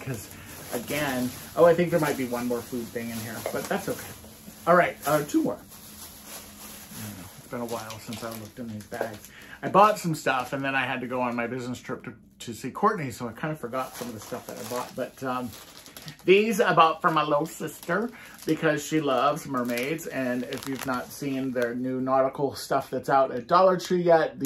again, oh, I think there might be one more food thing in here, but that's okay. All right, 2 more. It's been a while since I looked in these bags. I bought some stuff and then I had to go on my business trip to see Courtney, so I kind of forgot some of the stuff that I bought. But these I bought for my little sister because she loves mermaids. And if you've not seen their new nautical stuff that's out at Dollar Tree yet,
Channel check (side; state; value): both; identical; correlation 1.00